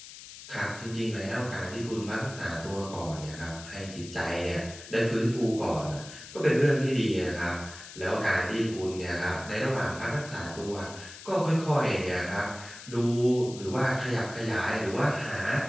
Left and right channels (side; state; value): left; noise; hiss, 15 dB below the sound